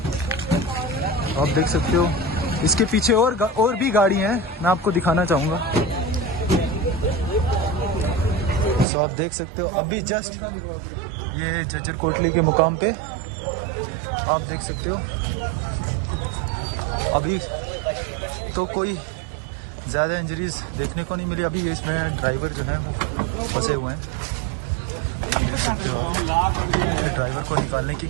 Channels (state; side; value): drops out; left; at 8.8 s